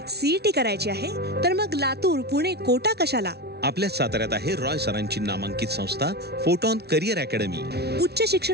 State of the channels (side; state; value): left; late; 0.48 ms